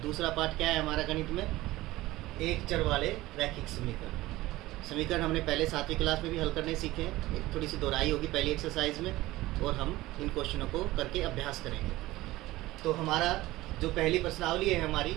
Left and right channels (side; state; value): left; quieter; 17.9 dB